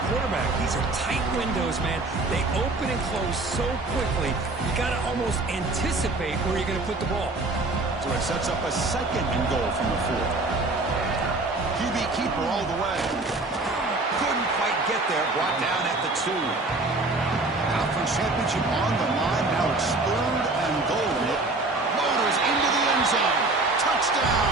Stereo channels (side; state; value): left; quieter; 3.1 dB